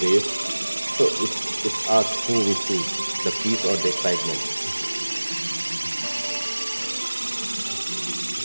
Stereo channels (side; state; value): both; inverted; correlation -1.00